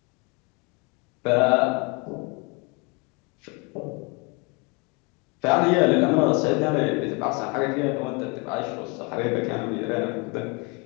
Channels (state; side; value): quieter; right; 30.7 dB